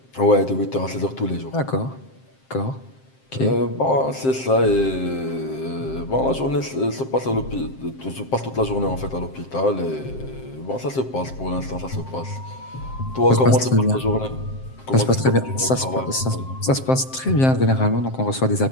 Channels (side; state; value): right; late; 7.6 ms